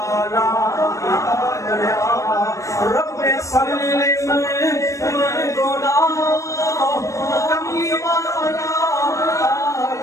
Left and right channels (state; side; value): late; right; 0.15 ms